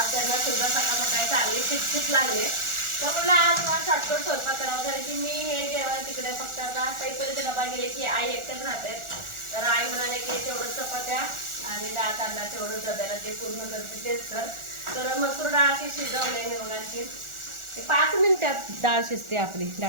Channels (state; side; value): late; left; 1.4 ms